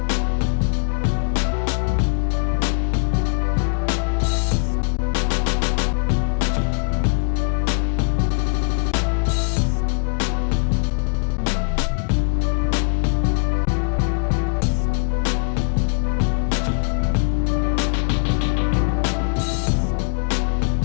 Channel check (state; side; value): silent; right; 56 dB below the other